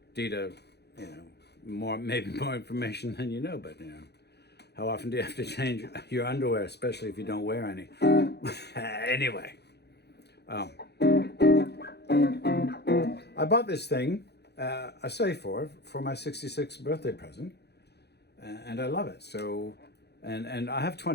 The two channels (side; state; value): right; late; 0.48 ms